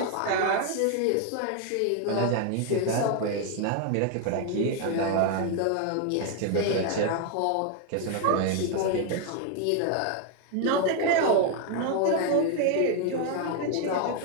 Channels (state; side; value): different; both; correlation 0.01